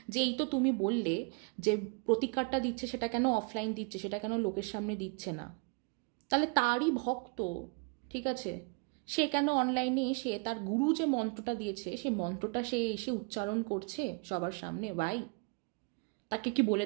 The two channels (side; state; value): left; quieter; 32.0 dB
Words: যে এই তো তুমি বললে যে প্রতিকারটা দিচ্ছে, সেটা কেন অফলাইন দিচ্ছে, সেটা কেন লোকের সামনে দিচ্ছে না? তাহলে তারই ভক্ত, ঠিক আছে, সে কেন অনলাইনে এসে তার গুরু যে মন্ত্রটা দিয়েছে সেই মন্ত্রটা সে এসে উচ্চারণ করছে সবার সামনে? ভাই, তাকে কি বলে